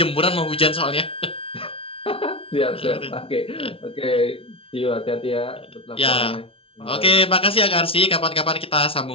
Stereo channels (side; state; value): right; late; 0.26 ms